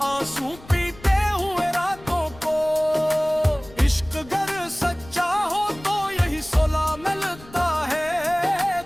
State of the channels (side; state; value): left; noise; rumble, 20 dB below the sound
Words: आंसू पीते हुए रातों को। इश्क गर सच्चा हो तो यही सुलह मिलता है,